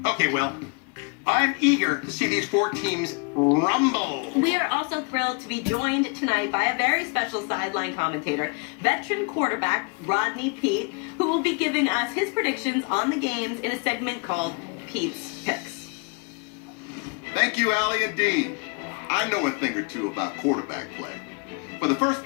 Okay, well, I'm eager to see these 4 teams rumble. We are also thrilled to be joined tonight by a very special sideline commentator, veteran quarterback Rodney Pete, who will be giving us his predictions on the games in a segment called Pete's Picks. Thank you, Allie and Dean. I know a thing or two about quarterback play. For the first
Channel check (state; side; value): quieter; right; 33.2 dB